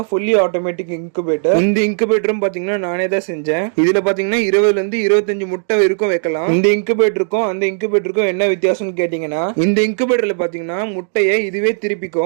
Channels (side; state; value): left; silent; digital silence